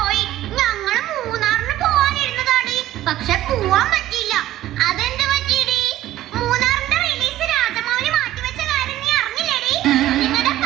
ഞങ്ങള് മൂന്നാറിന് പോവാനിരുന്നതാടി, പക്ഷെ പോവാൻ പറ്റിയില്ല. അതെന്ത് പറ്റിയടി? മൂന്നാറിന്റെ റിലീസ് രാജമൗലി മാറ്റിവെച്ച കാര്യം നീ അറിഞ്ഞില്ലേടി? നിങ്ങളുടെ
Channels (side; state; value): left; quieter; 14.1 dB